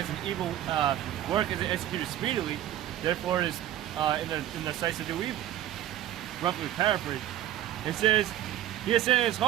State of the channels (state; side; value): quieter; left; 12.7 dB